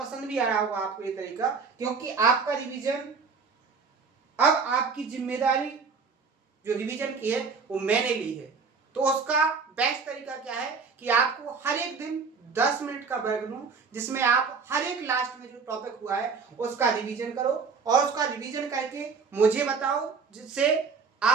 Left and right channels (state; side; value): quieter; left; 5.2 dB